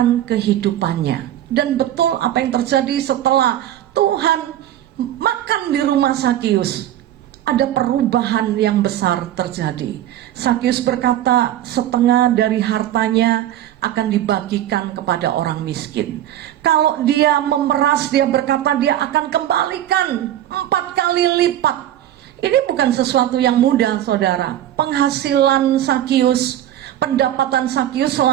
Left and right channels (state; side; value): quieter; left; 12.2 dB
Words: kehidupannya. Dan betul apa yang terjadi setelah Tuhan makan di rumah Sakius, ada perubahan yang besar terjadi. Sakius berkata setengah dari hartanya akan dibagikan kepada orang miskin. Kalau dia memeras, dia berkata dia akan kembalikan 4 kali lipat. Ini bukan sesuatu yang mudah, saudara. Penghasilan Sakius, pendapatan Sakius